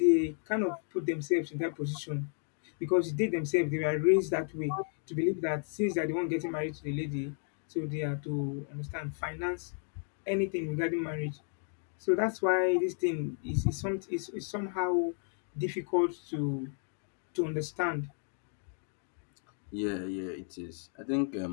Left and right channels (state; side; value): silent; right; 56 dB below the other